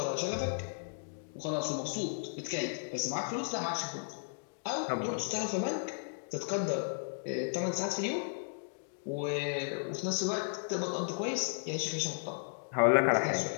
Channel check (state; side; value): silent; right; digital silence